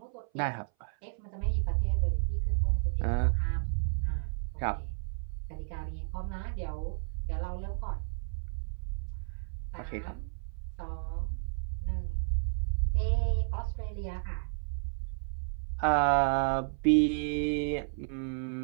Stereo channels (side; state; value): left; silent; 56 dB below the other